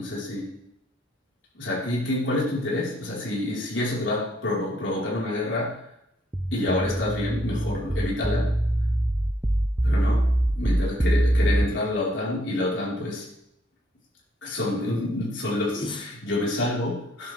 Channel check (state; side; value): normal; both; correlation 0.69